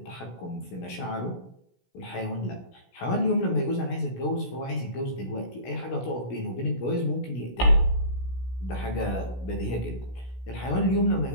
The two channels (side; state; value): right; late; 16 ms